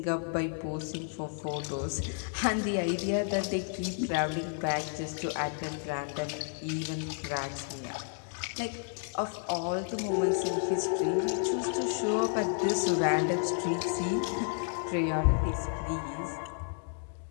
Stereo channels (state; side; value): silent; right; 57 dB below the other